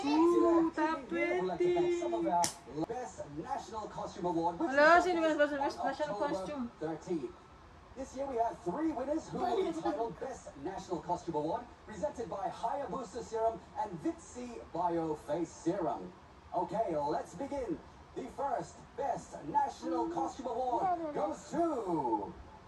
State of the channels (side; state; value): both; identical; correlation 1.00